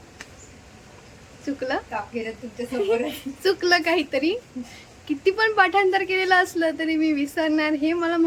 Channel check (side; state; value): both; identical; correlation 1.00